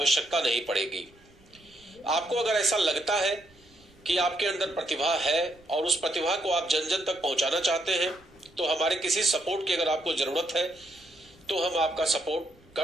नहीं पड़ेगी। आपको अगर ऐसा लगता है कि आपके अंदर प्रतिभा है और उस प्रतिभा को आप जन जन तक पहुंचाना चाहते हैं, तो हमारे किसी सपोर्ट की अगर आपको जरूरत है तो हम आपका सपोर्ट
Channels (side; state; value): right; noise; rumble, 28 dB below the sound